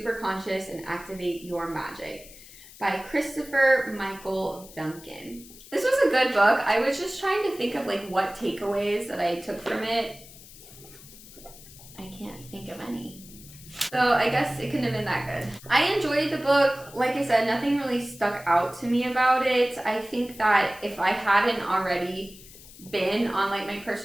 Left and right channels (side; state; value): left; noise; hiss, 19 dB below the sound